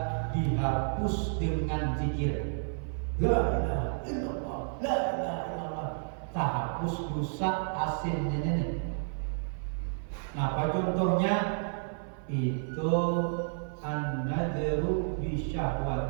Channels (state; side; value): silent; left; 57 dB below the other